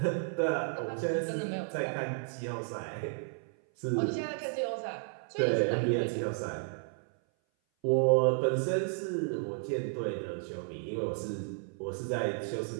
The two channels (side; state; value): left; silent; 56 dB below the other